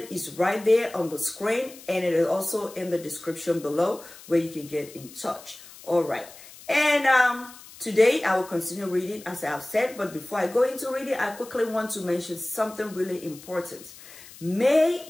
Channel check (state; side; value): noise; left; hiss, 19 dB below the sound